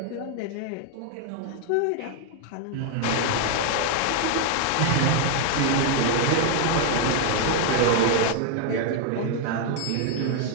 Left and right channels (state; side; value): different; both; correlation 0.00